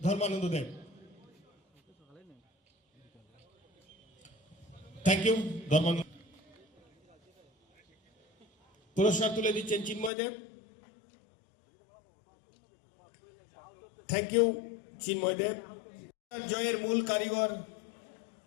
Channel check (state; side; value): drops out; right; at 10.1 s